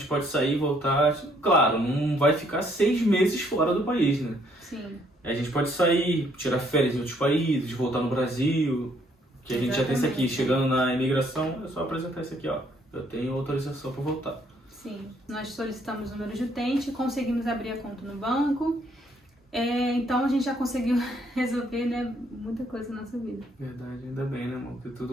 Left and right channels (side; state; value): both; normal; correlation 0.67